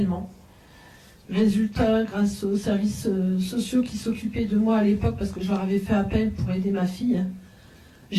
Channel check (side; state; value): both; identical; correlation 1.00